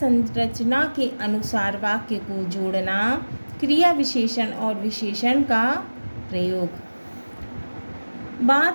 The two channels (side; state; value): both; inverted; correlation -1.00